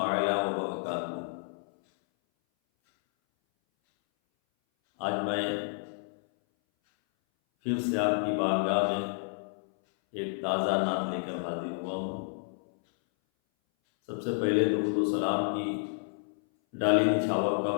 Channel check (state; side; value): silent; right; 58 dB below the other